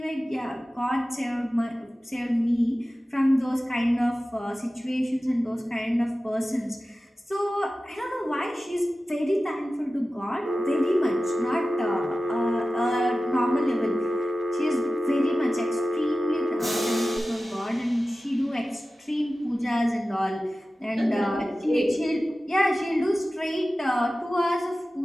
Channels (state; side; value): normal; both; correlation 0.95